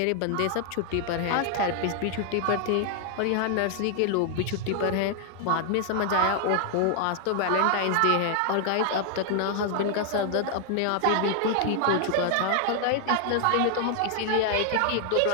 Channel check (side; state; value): both; different; correlation 0.00